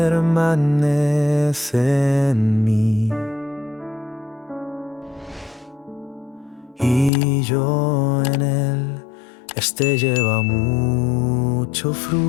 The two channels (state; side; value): drops out; right; at 7.1 s